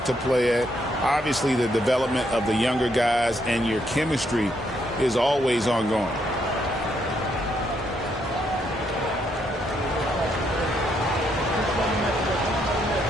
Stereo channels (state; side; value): normal; both; correlation 0.75